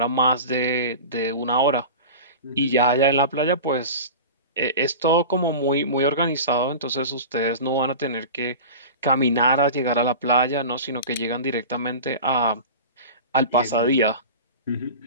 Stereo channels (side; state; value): both; inverted; correlation -0.32